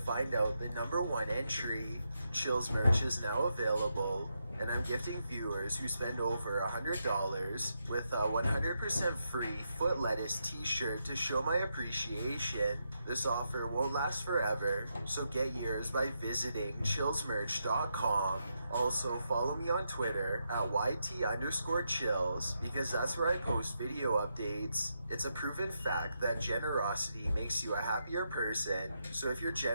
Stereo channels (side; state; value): both; inverted; correlation -0.83